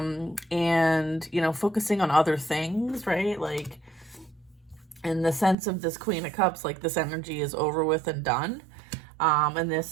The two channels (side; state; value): left; drops out; at 5.6 s